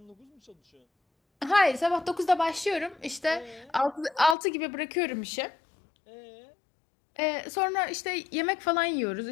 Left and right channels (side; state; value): right; drops out; at 4.4 s